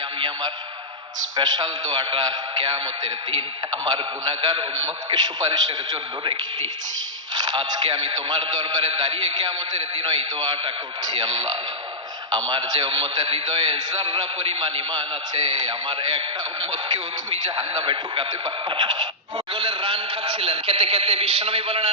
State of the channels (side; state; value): both; normal; correlation -0.10